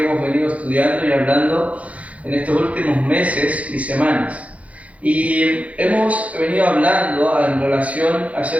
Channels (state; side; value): late; left; 0.066 ms